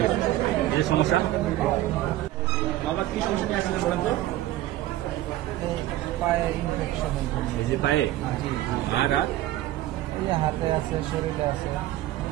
গেছে এই যে সমস্যা বাবা কি সমস্যা নিয়ে আসছিলেন বলেন তো পায়ে ইনফেকশন এই যে পায়ে আর হাতে আছে শরীরে আছে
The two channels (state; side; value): quieter; left; 15.0 dB